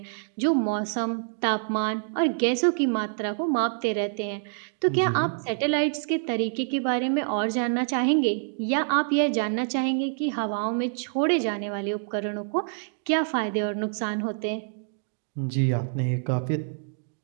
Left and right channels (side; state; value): left; silent; digital silence